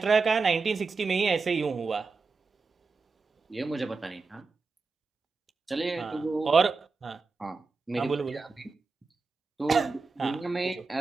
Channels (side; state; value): left; quieter; 4.3 dB